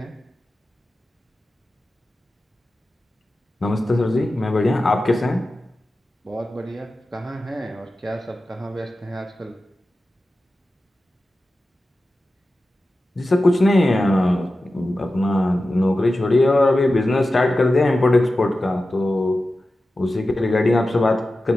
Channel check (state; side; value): normal; both; correlation 0.93